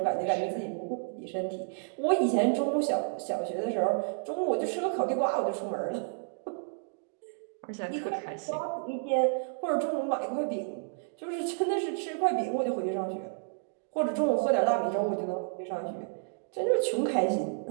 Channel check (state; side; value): silent; left; digital silence